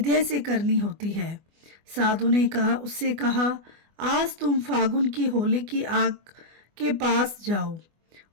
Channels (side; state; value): left; late; 24 ms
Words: से करनी होती है। साधु ने उससे कहा, आज तुम फागुन की होली की आग के पास जाओ